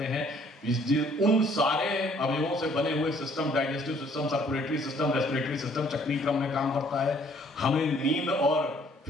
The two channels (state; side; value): normal; both; correlation 0.61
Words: हैं। उन सारे अवयवों से बने हुए system, digestive system, circulatory system, respiratory system चक्रीय क्रम में काम करता है। हमें नींद और